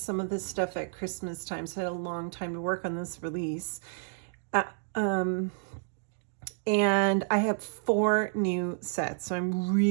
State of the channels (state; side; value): silent; left; digital silence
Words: of this stuff at Christmas time. So I had a long time to work on this release. And I have 4 new sets. So I'm